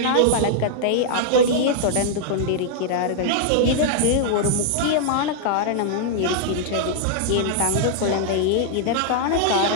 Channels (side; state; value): both; different; correlation -0.01